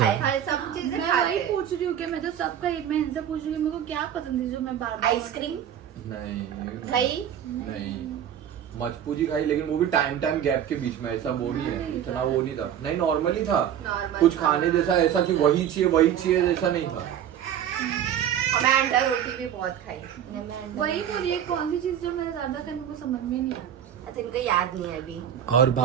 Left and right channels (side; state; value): left; quieter; 9.8 dB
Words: खाया? हर सब चीजें मैं खाते वही हैं। पूछ रही हूँ कि मैं तो सबका मैं इनसे पूछ रही हूँ मेरे को क्या पसंद है जो मैं बार बार। आइसक्रीम, नहीं दही, नहीं, मजपूजी खाई, लेकिन वो भी टाइम गैप के बीच में, ऐसा वो नहीं है, इतना वो नहीं था, नहीं नॉर्मली था, Normal कुछ था। खाने जैसा ऐसा कि वही चाहिए जैसा नहीं था। और मैं अंडा रोटी भी बहुत खाई। वही बोलिए कौन सी चीज जो मैं ज्यादा खाने को समझ में नहीं आती। अच्छा इनको याद नहीं है अभी। और